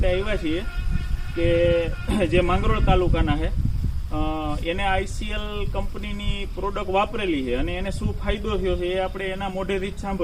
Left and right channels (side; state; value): both; identical; correlation 1.00